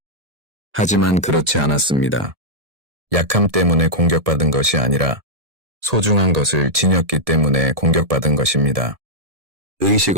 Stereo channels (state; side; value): late; left; 1.7 ms